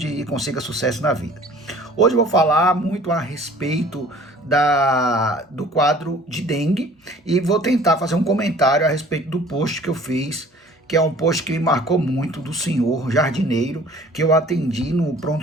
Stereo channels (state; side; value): normal; both; correlation 0.50